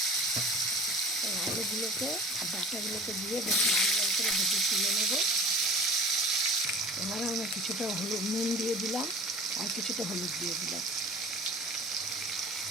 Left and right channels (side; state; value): both; normal; correlation 0.40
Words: এই আলুগুলোকে আর ডাঁটাগুলোকে দিয়ে বেশ লাল লাল করে ভেজে তুলে নেবো। এবারে আমি কিছুটা নুন দিয়ে দিলাম আর কিছুটা হলুদ দিয়ে দিলাম।